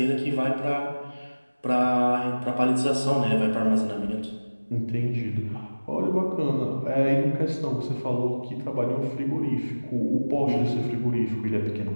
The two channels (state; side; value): inverted; both; correlation -1.00